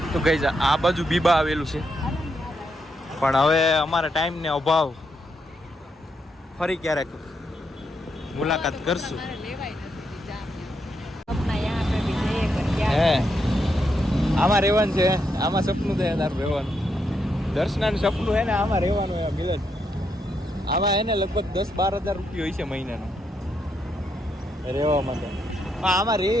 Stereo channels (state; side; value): normal; both; correlation 0.80